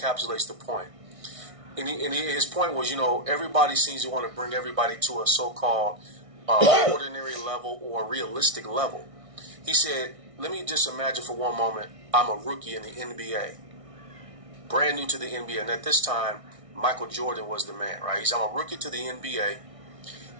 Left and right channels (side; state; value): left; late; 1.6 ms